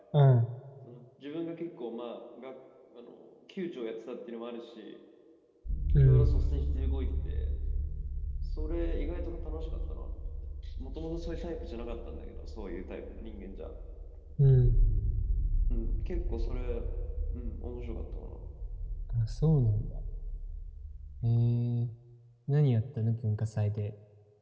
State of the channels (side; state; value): both; identical; correlation 1.00